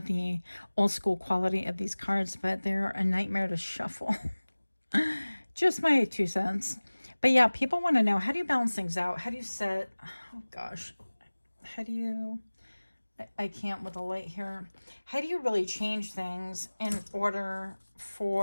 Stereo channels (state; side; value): inverted; both; correlation -1.00